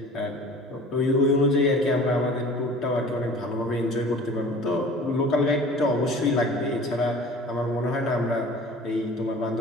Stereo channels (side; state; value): both; normal; correlation 0.43